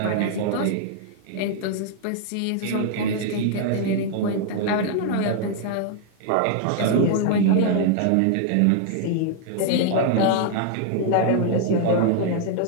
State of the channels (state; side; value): different; both; correlation 0.00